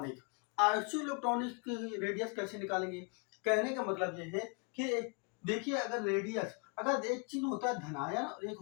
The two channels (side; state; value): right; quieter; 34.2 dB